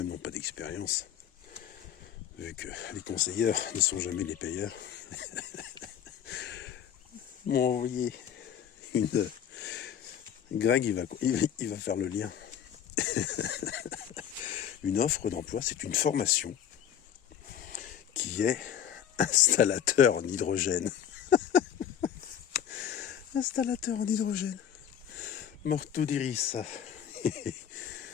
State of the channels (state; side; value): quieter; right; 9.3 dB